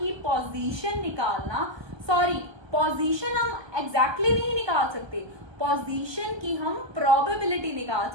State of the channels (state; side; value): late; left; 1.2 ms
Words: पोजीशन निकालना, सॉरी पोजीशन हम एग्जैक्टली नहीं निकाल सकते, पोजीशन की हम प्रोबेबिलिटी निकाल